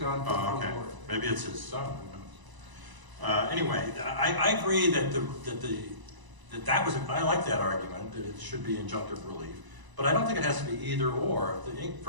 to the okay. board. Maybe it's his son. Who knows? Anyway, I agree that that was. I like that argument that it should be injunctive relief, but I don't think it has to be either or. If the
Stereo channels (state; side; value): late; left; 1.0 ms